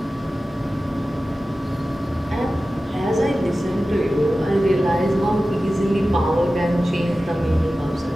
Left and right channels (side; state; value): both; normal; correlation 0.95